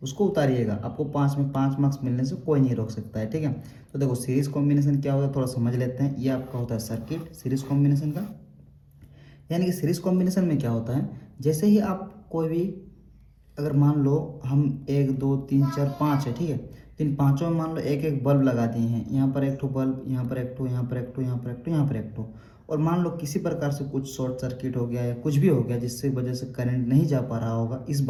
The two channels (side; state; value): both; identical; correlation 1.00